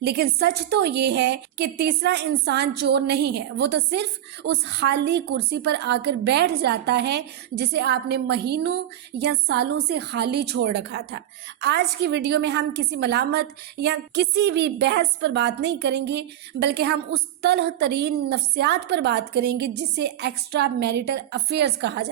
لیکن سچ تو یہ ہے کہ تیسرا انسان چور نہیں ہے، وہ تو صرف اس خالی کرسی پر آ کر بیٹھ جاتا ہے جسے آپ نے مہینوں یا سالوں سے خالی چھوڑ رکھا تھا۔ آج کی ویڈیو میں ہم کسی ملامت یا کسی بھی بحث پر بات نہیں کریں گے، بلکہ ہم اس تلخ ترین نفسیات پر بات کریں گے جسے ایکسٹرا میریٹل افیئرز کہا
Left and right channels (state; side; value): quieter; left; 11.9 dB